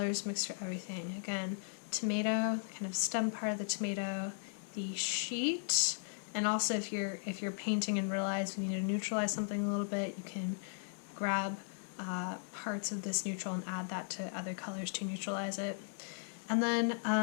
mixed for everything. Again, tomato, kind of stem part of the tomato, the sheet, and also if you're painting and realize you need to neutralize something a little bit, you can grab parts of this neutral and add that to other colors to neutralize it. And then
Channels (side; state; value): right; silent; 53 dB below the other